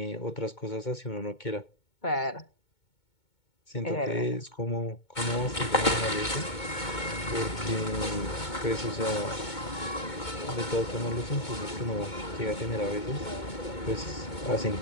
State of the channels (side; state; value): right; late; 2.2 ms